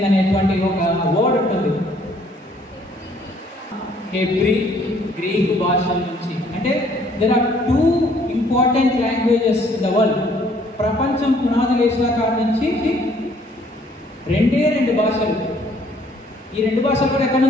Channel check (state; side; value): normal; both; correlation 0.62